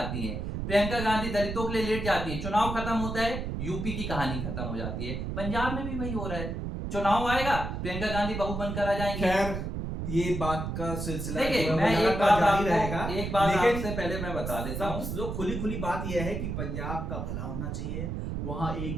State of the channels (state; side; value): noise; right; rumble, 4 dB below the sound